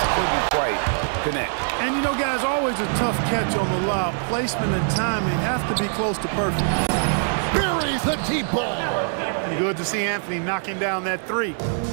couldn't quite connect. And you know, guys, always a tough catch on the lob. Placement and timing have to be close to perfect. Buries the deep ball. Good to see Anthony knocking down that 3.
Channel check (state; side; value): silent; left; digital silence